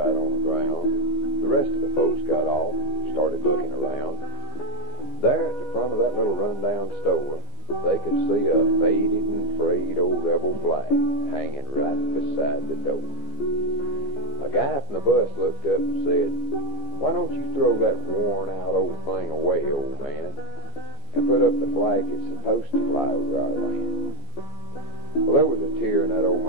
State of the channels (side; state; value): right; late; 14 ms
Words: on the ground. The rest of the folks got off and started looking around. There at the front of that little rundown store, they could see a faded and frayed old rebel flag hanging right beside the door. A guy from the bus looked up and said, "Why don't you throw that worn-out old thing away, old man, and put up the flag that's supposed to fly over our land?" Well, there was a tear in that old